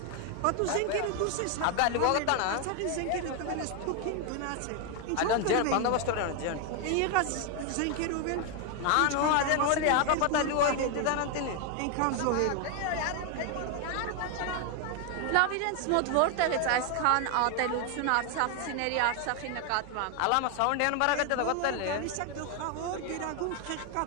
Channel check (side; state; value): both; different; correlation 0.01